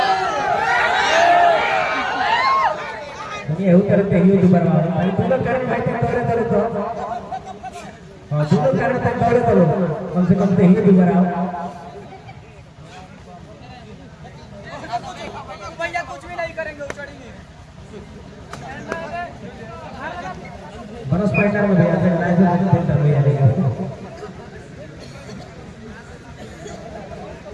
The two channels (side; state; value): both; identical; correlation 1.00